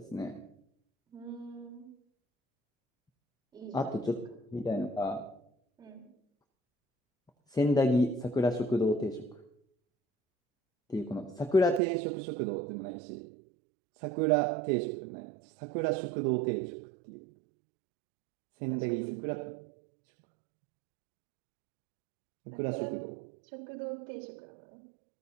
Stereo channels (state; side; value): drops out; left; at 11.8 s